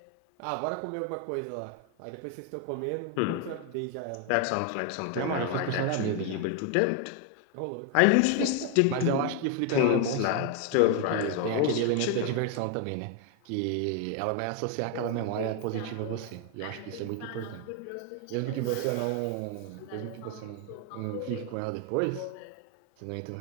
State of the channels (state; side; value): different; both; correlation 0.01